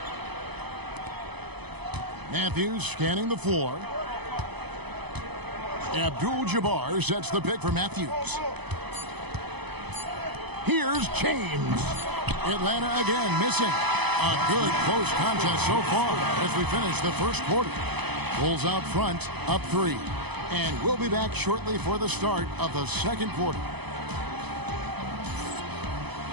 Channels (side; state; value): left; late; 0.99 ms